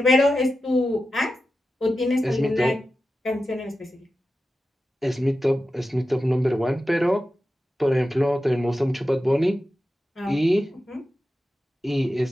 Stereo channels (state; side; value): normal; both; correlation 0.91